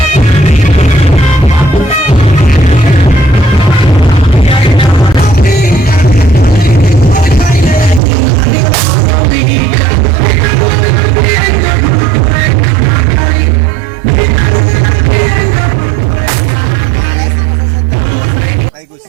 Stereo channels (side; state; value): left; drops out; at 8.0 s